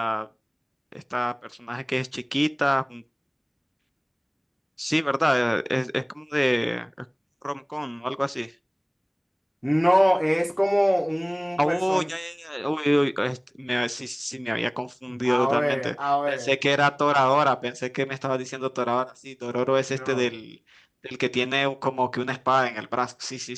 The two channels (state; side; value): identical; both; correlation 1.00